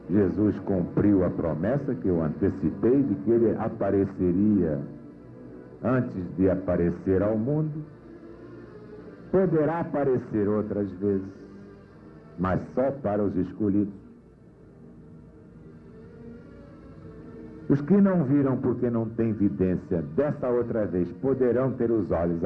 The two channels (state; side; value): identical; both; correlation 1.00